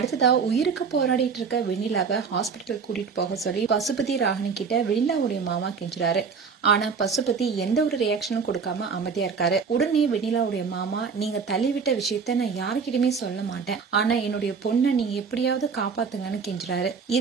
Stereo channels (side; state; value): left; quieter; 5.6 dB